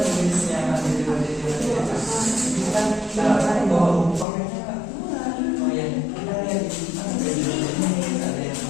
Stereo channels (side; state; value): right; drops out; at 4.2 s